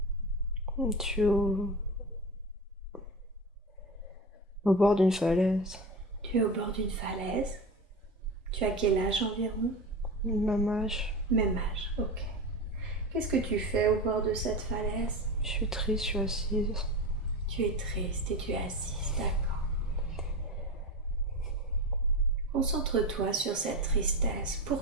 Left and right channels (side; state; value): both; normal; correlation 0.25